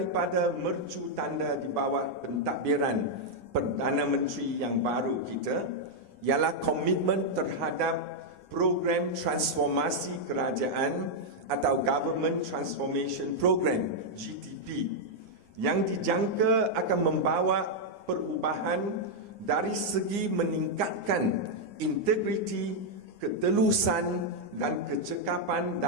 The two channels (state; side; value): late; left; 9.8 ms